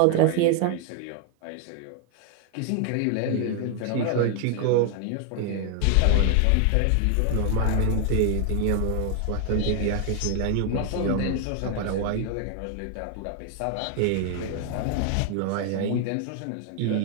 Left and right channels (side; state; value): both; different; correlation 0.00